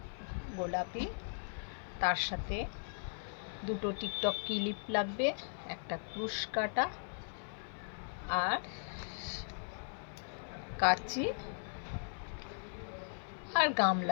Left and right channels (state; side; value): silent; right; 52 dB below the other